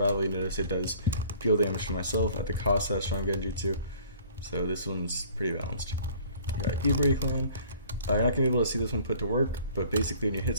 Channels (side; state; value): both; inverted; correlation -0.52